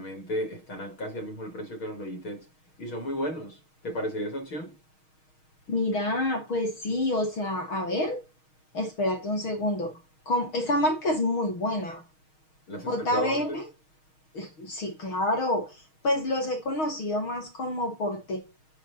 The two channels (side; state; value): right; late; 6.4 ms